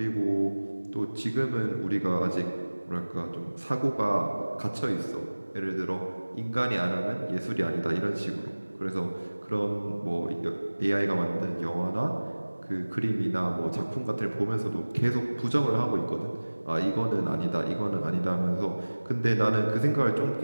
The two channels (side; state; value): both; inverted; correlation -1.00